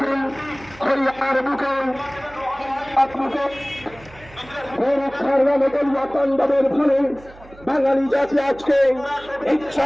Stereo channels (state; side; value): noise; right; hum, 22 dB below the sound